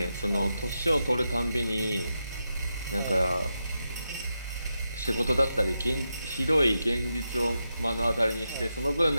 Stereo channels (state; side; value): inverted; both; correlation -0.87